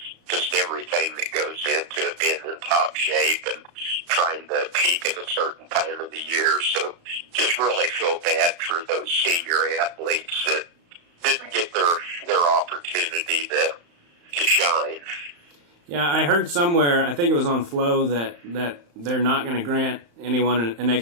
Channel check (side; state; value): left; late; 35 ms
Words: just everything that goes into it, being in top shape and trying to peak at a certain time of the year. So, just really feel bad for those senior athletes that didn't get their opportunity to shine. Yeah, I heard somewhere, I think it was on Flow, that they're not going to grant anyone an